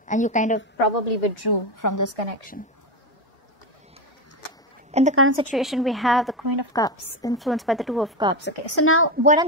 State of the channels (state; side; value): normal; both; correlation 0.14